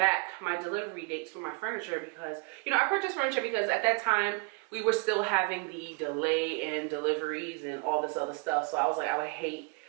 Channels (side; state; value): left; quieter; 31.7 dB